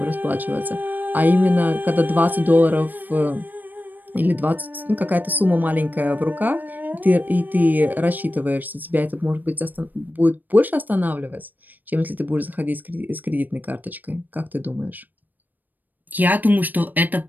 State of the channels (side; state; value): left; late; 0.087 ms